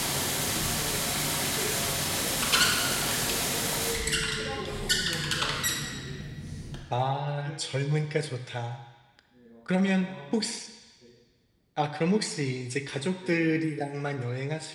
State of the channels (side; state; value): both; identical; correlation 1.00